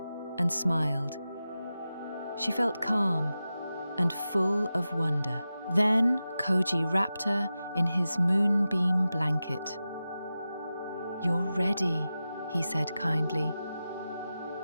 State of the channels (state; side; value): inverted; both; correlation -0.93